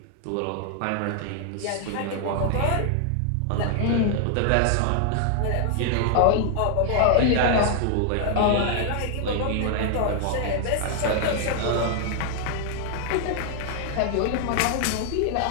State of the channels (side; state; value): both; different; correlation 0.00